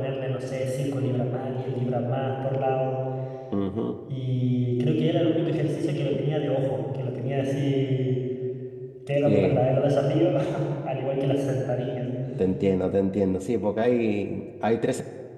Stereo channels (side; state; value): both; identical; correlation 1.00